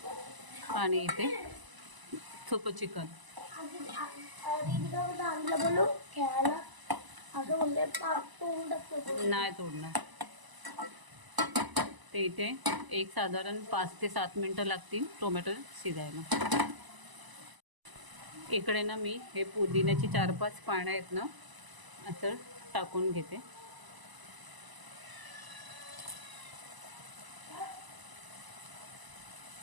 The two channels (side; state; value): left; late; 1.0 ms